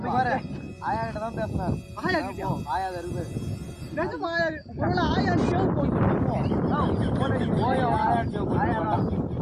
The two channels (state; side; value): identical; both; correlation 1.00